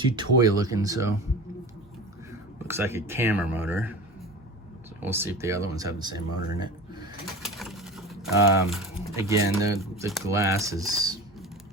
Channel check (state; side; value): normal; both; correlation 0.33